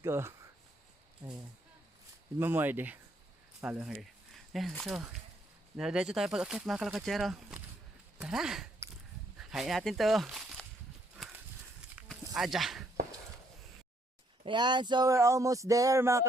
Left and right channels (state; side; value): normal; both; correlation 0.71